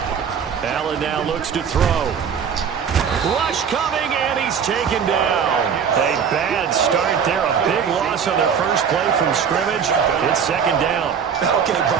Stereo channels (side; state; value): left; quieter; 7.2 dB